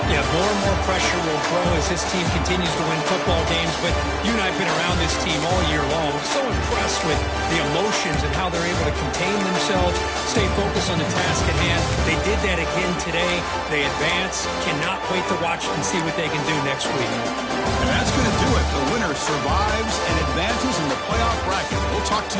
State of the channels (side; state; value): both; identical; correlation 1.00